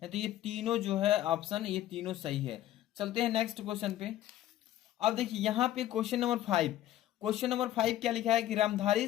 तो ये तीनों जो है ऑप्शन, ये तीनों सही है। चलते हैं नेक्स्ट क्वेश्चन पे। अब देखिए यहाँ पे क्वेश्चन नंबर 5। क्वेश्चन नंबर 5 क्या लिखा है कि रामधारी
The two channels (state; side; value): quieter; right; 13.2 dB